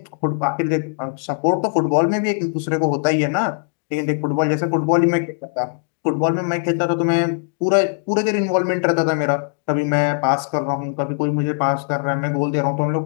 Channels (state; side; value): silent; right; digital silence